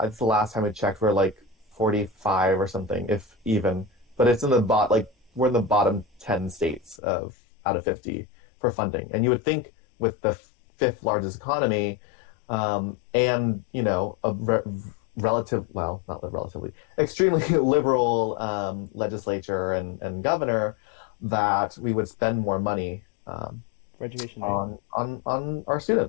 the last time I checked, we're like 45 or something, if even. But it's in the we're in the bottom 10 states out of 50 for funding. And you would think with the fifth largest economy and, extremely liberal legislature and governor, that we would spend more money for education on our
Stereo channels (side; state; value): right; drops out; at 7.0 s